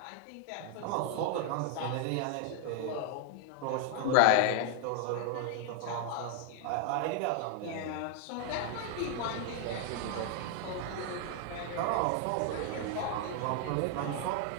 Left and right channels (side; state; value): both; different; correlation 0.00